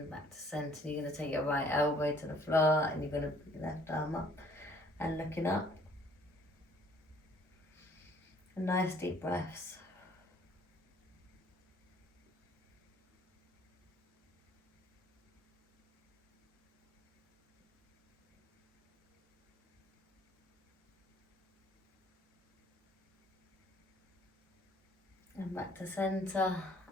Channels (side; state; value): both; normal; correlation 0.58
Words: back to centre. You're going to take your right elbow to the floor and you're going to put your left arm up and looking up. And nice deep breaths. And back to centre